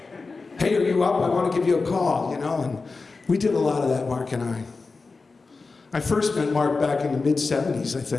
Hey, are you up? I want to give you a call, you know. And we did a lot of that, Mark and I. I first met Mark back in the mid-'70s, I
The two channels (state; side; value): quieter; right; 4.1 dB